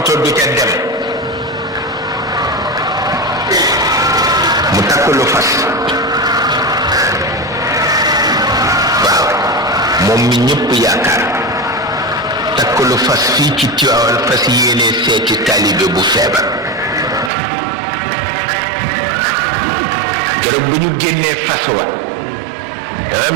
du ca dem mu takk lu fas waaw moom mi ñëpp yaakaar takk lu fas fii ci Tiwaawan fas yéene seeti taalibe bu feebar keroog bu ñu génnee fas wa dafa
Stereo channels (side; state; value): left; drops out; at 17.3 s